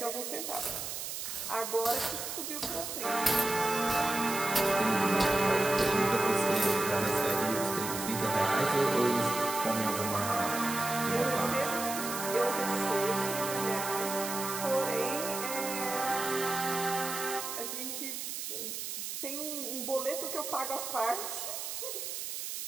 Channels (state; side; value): noise; right; hiss, 5 dB below the sound